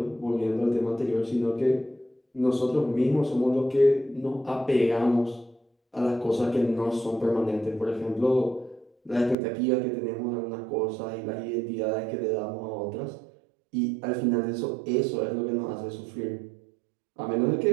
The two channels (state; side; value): drops out; left; at 9.3 s